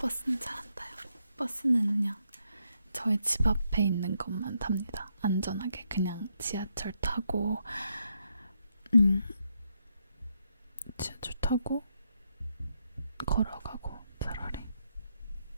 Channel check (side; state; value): both; inverted; correlation -0.79